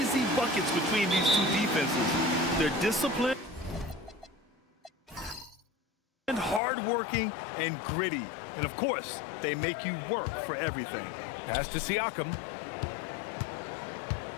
buckets between these 2 defenses. They're disciplined, and hard-working, and gritty. And, of course, they make you work for everything. Pass to Siakam.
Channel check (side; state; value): right; drops out; at 6.6 s